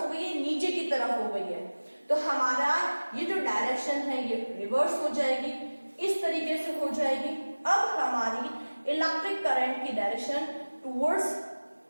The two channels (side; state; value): both; inverted; correlation -1.00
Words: गई है, नीचे की तरफ हो गई है, तो हमारा ये जो डायरेक्शन है ये रिवर्स हो जाएगी, इस तरीके से हो जाएगी। अब हमारी इलेक्ट्रिक करंट की डायरेक्शन टुवर्ड्स